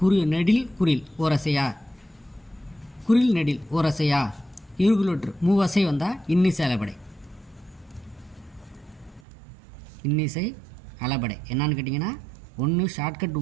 நெடில் குறில் ஓரசையா, குறில் நெடில் ஓரசையா, இருகுலொற்று மூவசை வந்தால் இன்னிசை அளபடை. இன்னிசை அளபடை என்னான்னு கேட்டிங்கன்னா ஒன்று ஷார்ட்கட்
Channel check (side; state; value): left; drops out; at 9.2 s